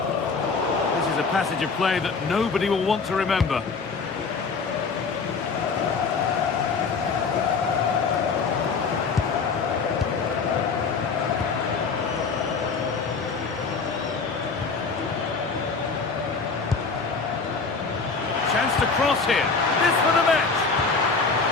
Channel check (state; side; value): quieter; right; 4.8 dB